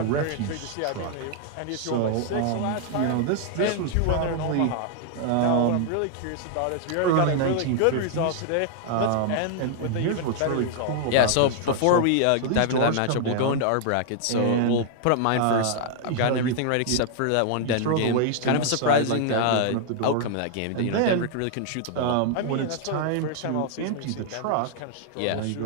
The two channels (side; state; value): both; different; correlation 0.00